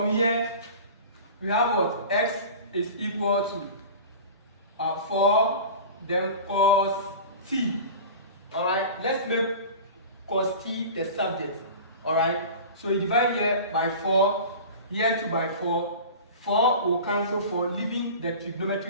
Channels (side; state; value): both; inverted; correlation -0.36